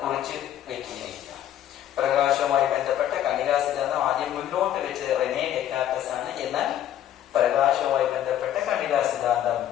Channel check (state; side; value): quieter; right; 11.4 dB